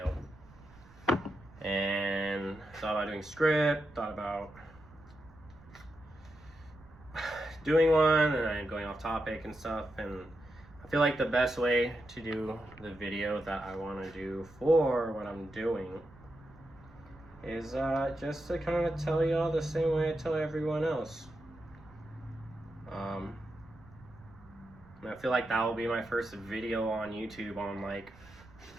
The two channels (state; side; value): noise; right; rumble, 23 dB below the sound